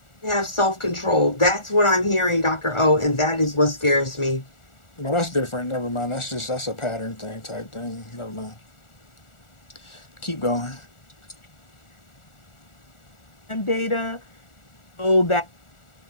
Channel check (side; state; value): right; late; 1.4 ms